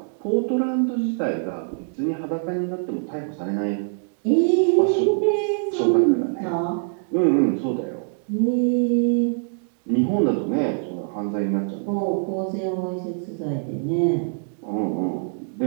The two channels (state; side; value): silent; left; digital silence